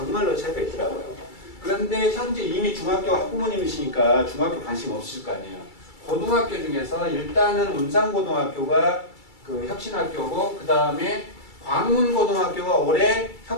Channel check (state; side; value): late; right; 2.3 ms